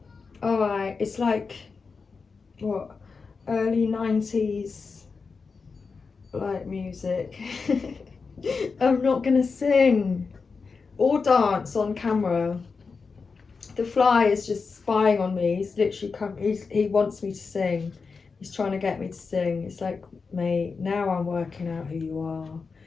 All right. It's like, what, early 90s like music. I'm not going to sing or dance on camera. The fly is just spying on me. He's literally he wants me to sing. He's trying to get me to sing. It's like, mate, now I'm working out who you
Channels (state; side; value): quieter; right; 4.8 dB